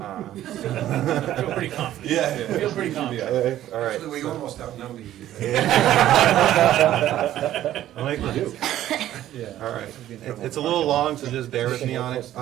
feel pretty confident. Yeah. I feel pretty confident. All right. Actually, we so- almost outnumber you. I like to do. Yeah. All right. It's a little long, so just bear with me on it.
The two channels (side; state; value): left; quieter; 12.8 dB